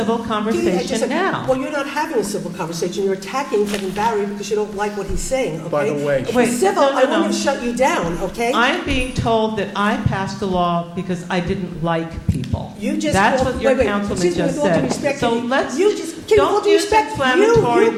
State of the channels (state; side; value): identical; both; correlation 1.00